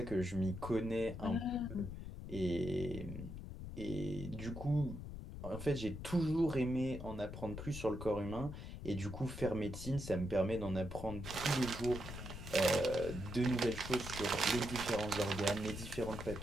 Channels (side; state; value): left; noise; rumble, 9 dB below the sound